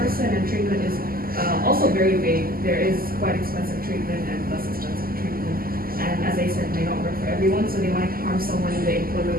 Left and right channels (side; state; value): left; late; 0.42 ms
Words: person, and treatment is also very vague. There is quite expensive treatment and less expensive treatment. And as I said, may not work for everyone, so they might harm someone in the